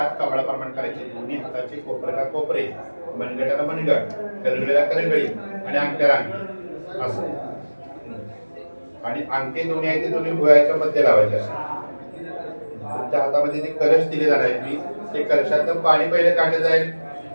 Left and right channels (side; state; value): both; inverted; correlation -1.00